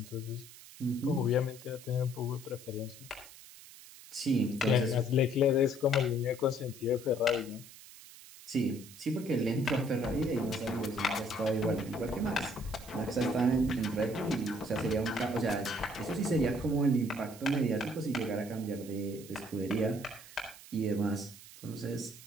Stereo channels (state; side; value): noise; right; hiss, 18 dB below the sound